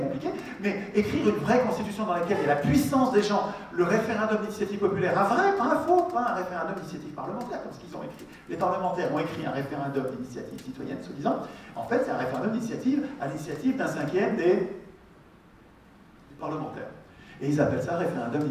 mais écrire une vraie constitution dans laquelle il y a la puissance des gens, le référendum d'initiative populaire, un vrai, pas un faux, pas un référendum d'initiative parlementaire, comme ce qu'ils ont écrit. Les parlementaires ont écrit un référendum d'initiative citoyenne, soi-disant. En fait, c'est un référendum d'initiative à l'initiative d'un cinquième des parlementaires. Et ils appellent ça référendum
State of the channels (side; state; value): both; identical; correlation 1.00